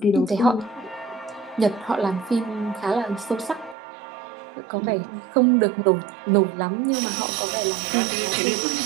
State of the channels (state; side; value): drops out; left; at 3.8 s